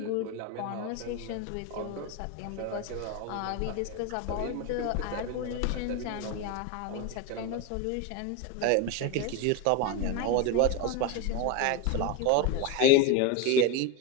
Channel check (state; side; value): different; both; correlation 0.03